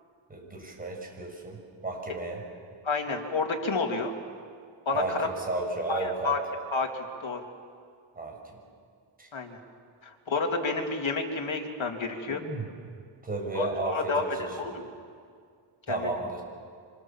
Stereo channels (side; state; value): both; normal; correlation -0.01